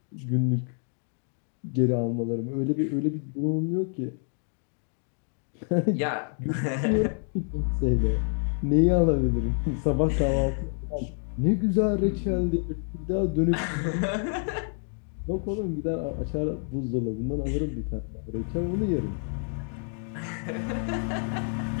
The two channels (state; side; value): silent; right; 56 dB below the other